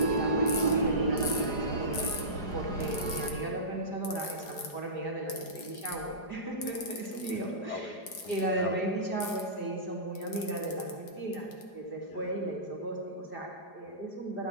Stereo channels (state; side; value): late; right; 4.9 ms